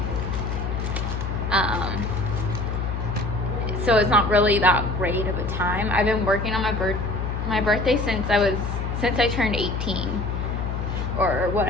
So it's not really that great of a time. I've been working on my birthday since I turned 18 or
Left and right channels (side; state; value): left; noise; hum, 2 dB below the sound